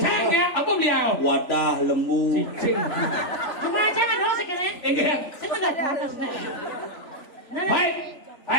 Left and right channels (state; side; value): late; right; 3.4 ms